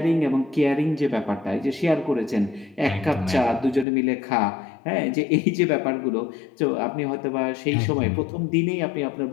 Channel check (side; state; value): right; drops out; at 3.9 s